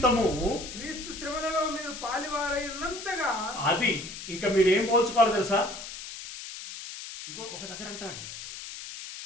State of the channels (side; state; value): left; noise; hiss, 10 dB below the sound